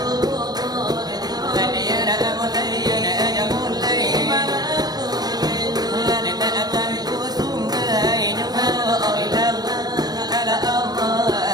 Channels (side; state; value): left; late; 0.19 ms